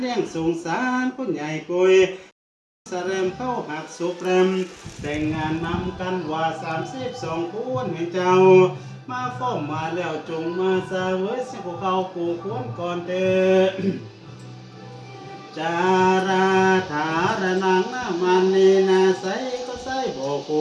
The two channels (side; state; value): both; identical; correlation 1.00